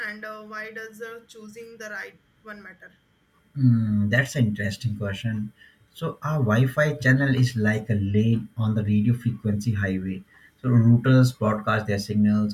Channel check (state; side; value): identical; both; correlation 1.00